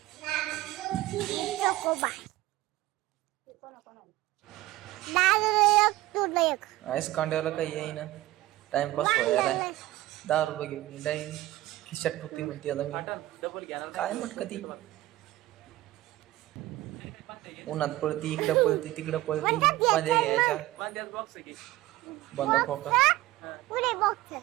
आईस कांड्याला काही येईना, टाइमपास व्हायला. 10 रुपये घेऊन जाईन खिशात ठुकती म्हणते. आता मी काय म्हटक ती उन्हात पळती, इकडं पळती, तिकडं पळती. मध्ये घ्यायच्या बंद फोका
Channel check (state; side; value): quieter; left; 16.8 dB